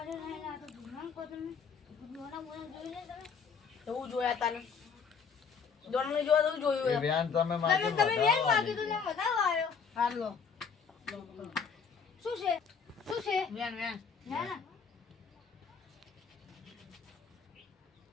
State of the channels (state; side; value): quieter; right; 6.1 dB